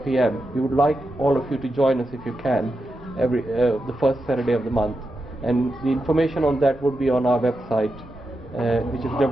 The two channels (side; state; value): both; normal; correlation 0.88